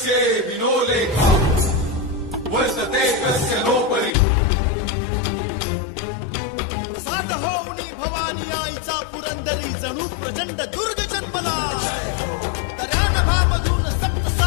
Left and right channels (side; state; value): right; drops out; at 4.1 s